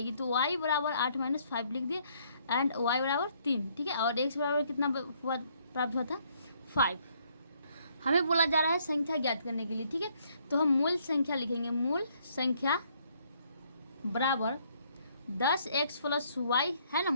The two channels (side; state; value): both; inverted; correlation -0.67